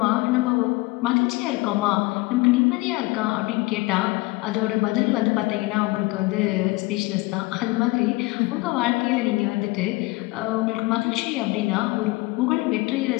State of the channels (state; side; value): quieter; right; 22.6 dB